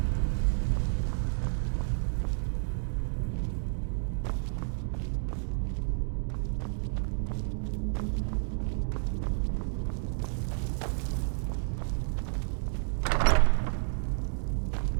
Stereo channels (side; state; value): left; silent; digital silence